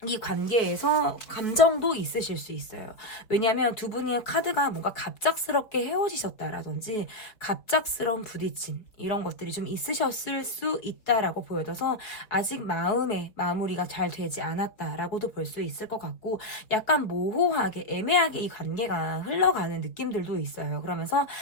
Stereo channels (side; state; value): right; late; 4.3 ms